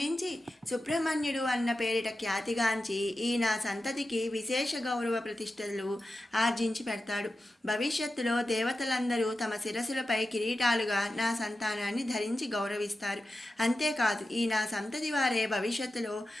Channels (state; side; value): normal; both; correlation 0.92